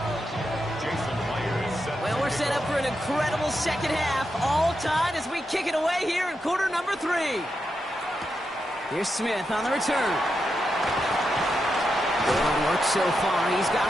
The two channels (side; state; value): both; normal; correlation 0.86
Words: Well, we're set up for an incredible second half. All tied as we kick it away here in quarter number 3. Here's Smith on the return. Good work so far. He's